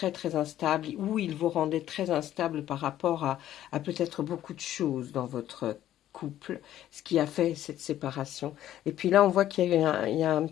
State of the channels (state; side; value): quieter; right; 12.4 dB